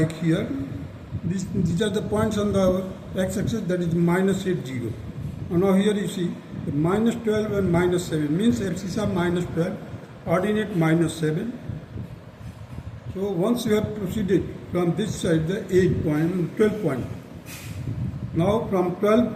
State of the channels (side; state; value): both; identical; correlation 1.00